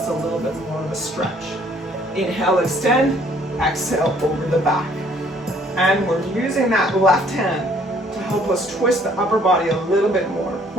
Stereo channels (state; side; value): normal; both; correlation 0.61